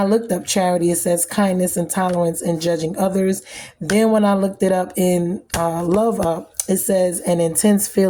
looked up charity, it says kindness and tolerance and judging others. Then when I looked it up in Love Up, it says an intense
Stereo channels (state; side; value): identical; both; correlation 1.00